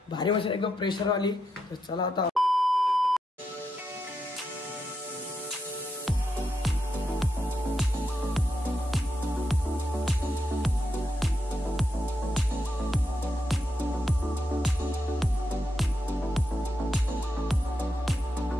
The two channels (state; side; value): normal; both; correlation 0.84